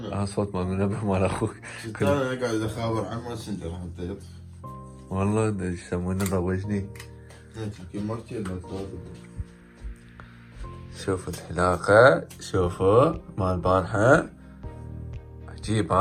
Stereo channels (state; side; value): identical; both; correlation 1.00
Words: صوت مال المنبه مال اخوك. انا قاعد اخابر عن ماسنجر حتى يطفي. والله ايش يسمونه ضوجني. يمكن ما كثير شوفوا الحلاقة، شوفوا مال البارحة عجيب